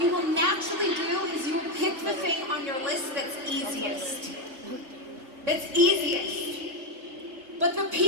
will naturally do is you will pick the thing on your list that's easiest. That's easiest. But the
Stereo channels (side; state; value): left; late; 3.6 ms